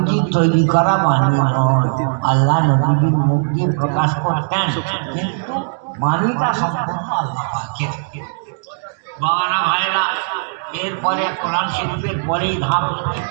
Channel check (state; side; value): silent; left; digital silence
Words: তৈরি করা বাণী নয়। আল্লাহ নবীজির মুখ দিয়ে প্রকাশ করতেন, কিন্তু বাণীটা সম্পূর্ণ আল্লাহ পাকের। বাবারা ভাইরা, এরপরে কোরআন শরীফের পরেই ধাপ হচ্ছে